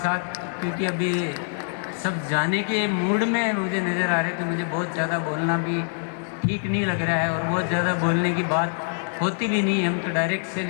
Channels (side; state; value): right; silent; 60 dB below the other